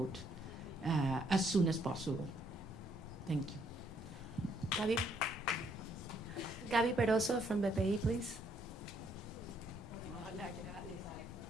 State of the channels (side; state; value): both; normal; correlation 0.70